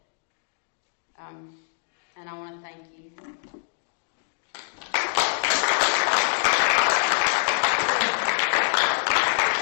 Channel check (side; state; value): right; silent; digital silence